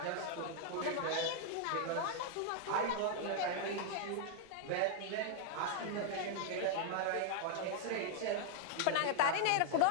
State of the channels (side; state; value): both; different; correlation 0.00